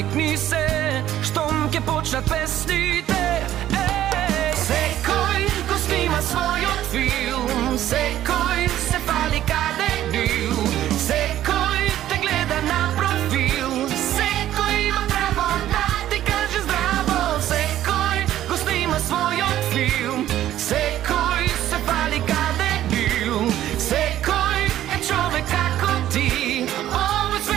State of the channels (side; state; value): left; quieter; 12.6 dB